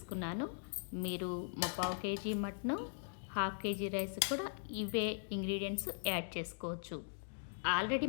మీరు 3/4 KG mutton, half KG rice కూడా ఇవే ఇంగ్రీడియంట్స్ యాడ్ చేసుకోవచ్చు. ఆల్రెడీ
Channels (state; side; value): silent; right; digital silence